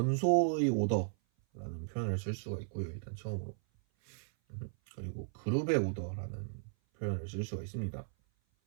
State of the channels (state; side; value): silent; left; 54 dB below the other